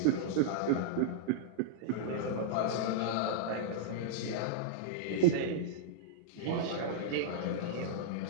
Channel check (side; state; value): both; different; correlation -0.02